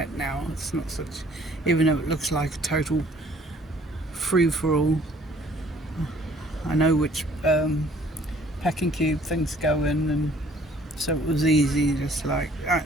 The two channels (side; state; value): both; normal; correlation 0.58